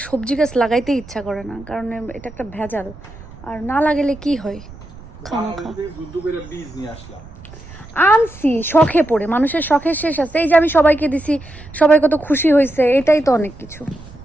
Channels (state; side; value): noise; right; rumble, 18 dB below the sound